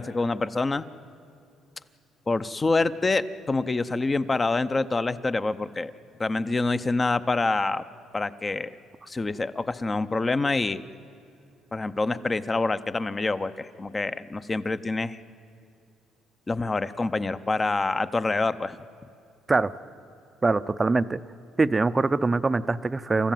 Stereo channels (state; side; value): normal; both; correlation 0.93